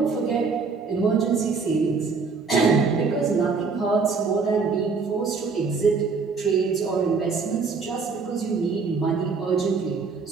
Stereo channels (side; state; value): left; quieter; 4.8 dB